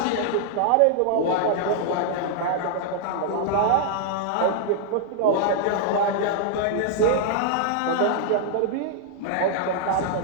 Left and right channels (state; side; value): different; both; correlation -0.01